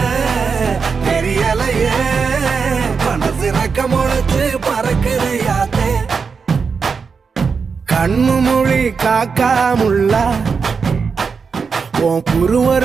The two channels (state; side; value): quieter; left; 5.4 dB